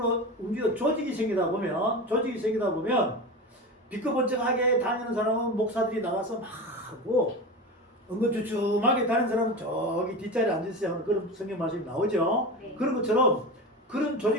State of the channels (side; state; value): both; normal; correlation 0.26